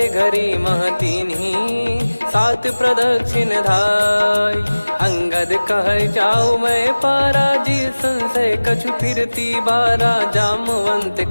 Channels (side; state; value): both; inverted; correlation -1.00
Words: घरी मह दीन्ही, सात प्रदक्षिण धाय। अंगद कह जाऊ मैं पारा, जी संशय कछु फिरती बारा।